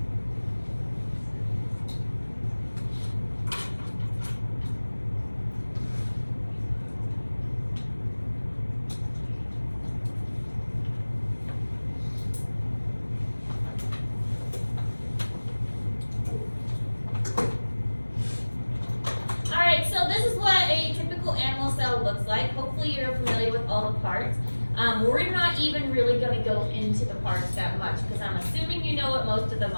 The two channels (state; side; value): inverted; both; correlation -1.00